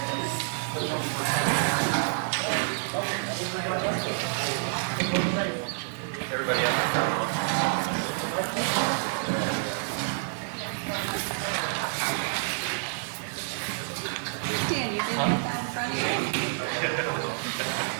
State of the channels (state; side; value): silent; left; digital silence